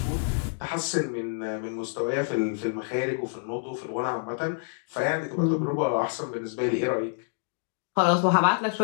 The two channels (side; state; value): right; silent; digital silence